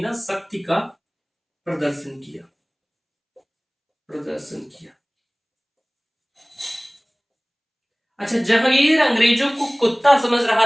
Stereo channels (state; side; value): identical; both; correlation 1.00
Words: शक्ति का प्रदर्शन किया। अच्छा, जहांगीर अंग्रेजों को कुत्ता समझ रहा